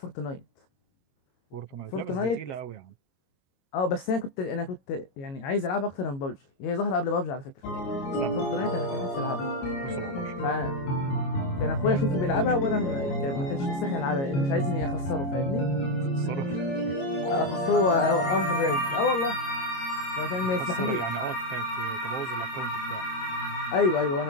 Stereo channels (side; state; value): right; late; 22 ms